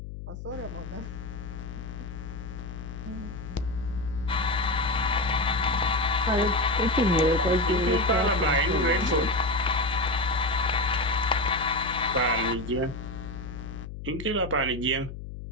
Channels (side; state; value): left; noise; hum, 10 dB below the sound